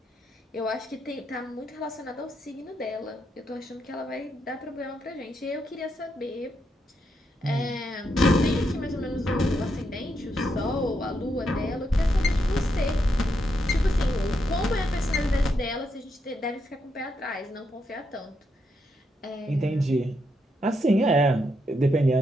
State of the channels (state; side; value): normal; both; correlation 0.80